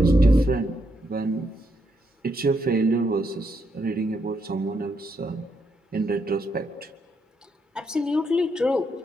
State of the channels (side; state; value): both; normal; correlation 0.79